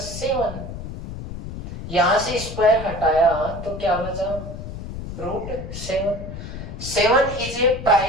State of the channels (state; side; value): noise; left; rumble, 9 dB below the sound